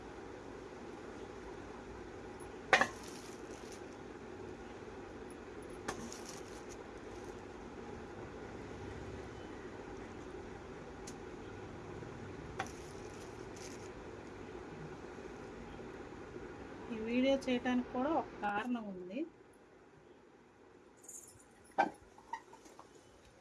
ఈ వీడియో చేయడానికి కూడా ఒక కారణం ఉంది.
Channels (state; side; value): identical; both; correlation 1.00